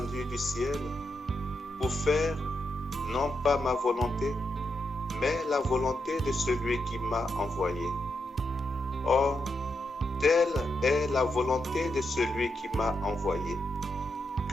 du ciel pour faire non pas ma volonté, mais la volonté de celui qui m'a envoyé. Or, telle est la volonté de celui qui m'a envoyé,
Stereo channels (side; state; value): both; normal; correlation 0.84